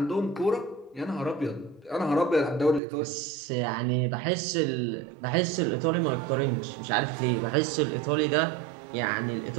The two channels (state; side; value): drops out; left; at 2.8 s